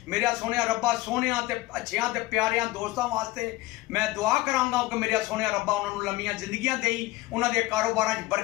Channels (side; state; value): right; quieter; 19.2 dB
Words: मेरा सोनिया रब्बा सोनिया ते अच्छियां ते प्यारियां दोस्तां वास्ते मैं दुआ करांगा कि मेरा सोनिया रब्बा उन्हां नूं लंबियां जिंदगियां देई, उन्हां दे कारोबारां च